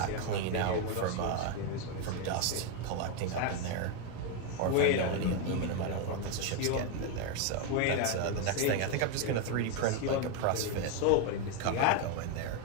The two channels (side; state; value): both; different; correlation 0.02